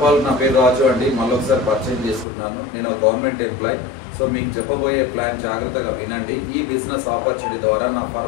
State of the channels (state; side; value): drops out; right; at 2.2 s